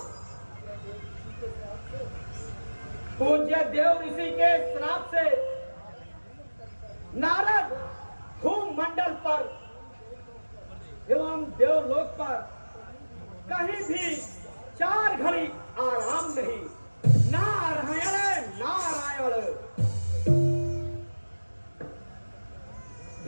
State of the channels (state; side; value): inverted; both; correlation -1.00